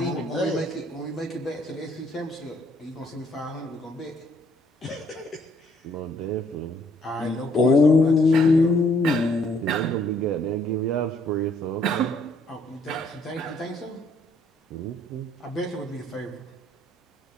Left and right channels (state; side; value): normal; both; correlation 0.66